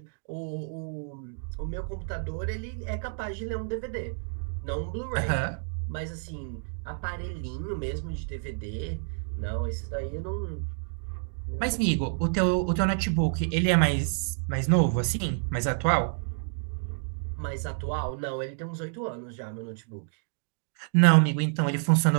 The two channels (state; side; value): silent; left; 59 dB below the other